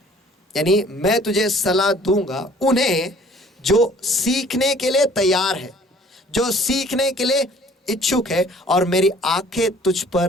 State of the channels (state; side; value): normal; both; correlation 0.54